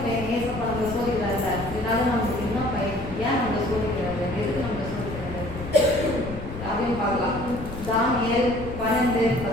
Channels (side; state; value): left; noise; rumble, 10 dB below the sound